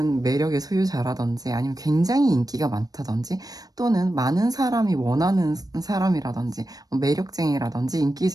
매력의 소유자라든지 아니면 굉장히 인기가 많다든지 또는 많은 사람이 원하는 사람이라든지 매력쟁이라든지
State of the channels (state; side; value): late; left; 0.18 ms